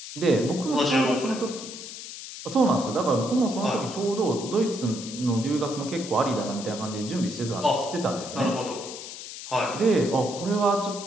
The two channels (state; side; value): noise; left; hiss, 11 dB below the sound